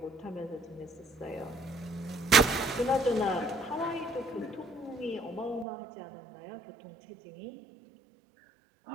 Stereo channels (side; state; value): left; drops out; at 5.7 s